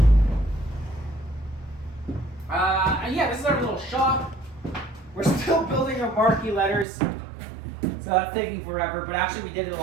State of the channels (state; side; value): drops out; left; at 6.9 s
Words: And yeah, this is our little shop. We're still building our marquee letters, so that's taking forever, but actually we did a